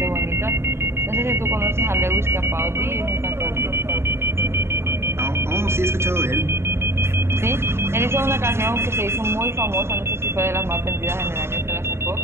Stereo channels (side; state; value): left; late; 0.12 ms